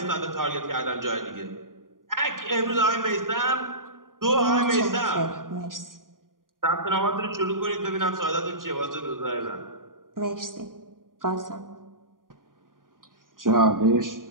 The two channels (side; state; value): left; late; 0.90 ms